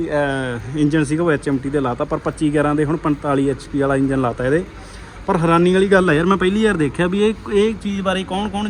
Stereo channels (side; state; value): both; identical; correlation 1.00